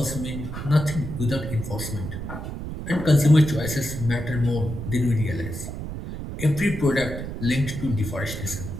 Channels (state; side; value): noise; right; rumble, 7 dB below the sound